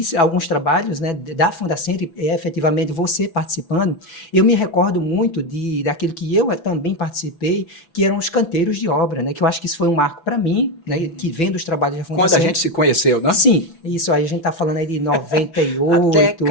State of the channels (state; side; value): late; right; 6.0 ms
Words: alguns trabalhos, né, da Fundacentro e efetivamente você participando, eu me recordo muito daquilo que eu também participei, que eram os canteiros de obra, né, que eu acho que isso foi um marco para mim, né, que vendo os trabalhos da Fundacentro. Quando a gente se conheceu, né? Sim, isso aí a gente está falando aí de 98.